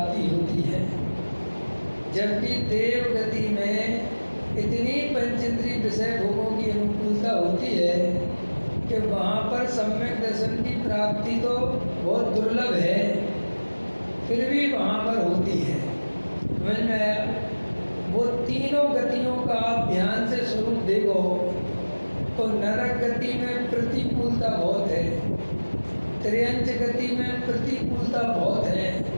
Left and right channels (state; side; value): inverted; both; correlation -1.00